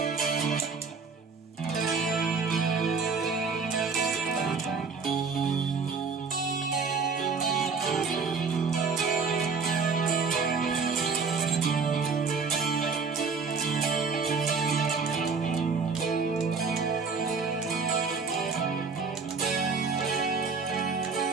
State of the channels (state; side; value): quieter; left; 5.0 dB